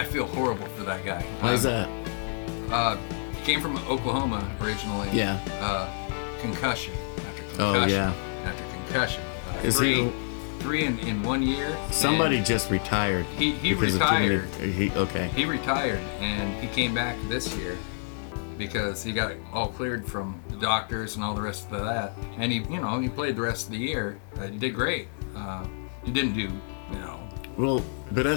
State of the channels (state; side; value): silent; right; digital silence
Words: feel horrible for that guy. Why is that? Came from Oklahoma originally. Yeah. Concussion after Oh, concussion. yeah. After concussion. Is Three in 1 year. Somebody just retired. He because of retired. Okay. He retired, and he came back this year because he got all cleared from the doctors and all the rest of that. And he played the rest of the year. He did great. He didn't do, Well, but